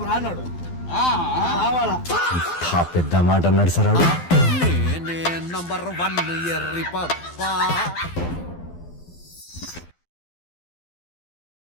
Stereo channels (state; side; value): late; right; 12 ms